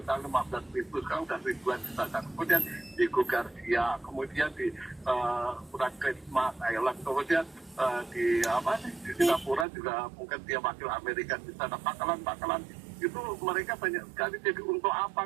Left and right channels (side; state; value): left; drops out; at 9.7 s